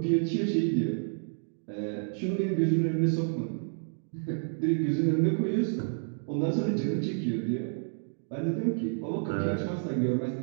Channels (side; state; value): left; silent; 58 dB below the other